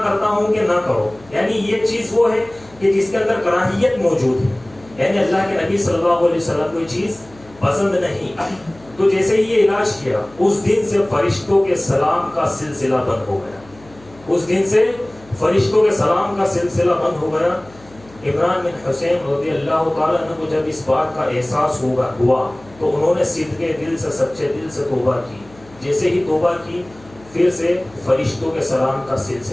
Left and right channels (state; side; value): noise; left; hum, 25 dB below the sound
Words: کرتا ہوں کہ نہ کرو، یعنی یہ چیز وہ ہے کہ جس کے اندر کراہیت موجود ہے، یعنی اللہ کے نبی صلی اللہ علیہ وسلم کو یہ چیز پسند نہیں۔ تو جیسے ہی یہ علاج کیا اس دن سے فرشتوں کے سلام کا سلسلہ بند ہو گیا، اس دن سے فرشتوں کے سلام کا سلسلہ بند ہو گیا۔ عمران بن حسین رضی اللہ تعالیٰ عنہ کو جب اس بات کا احساس ہوا تو انہوں نے صدقے دل سے، سچے دل سے توبہ کی۔ جیسے ہی توبہ کی پھر سے فرشتوں کے سلام کا